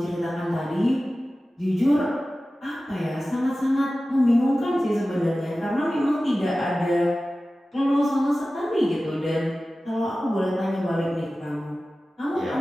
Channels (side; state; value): both; normal; correlation 0.96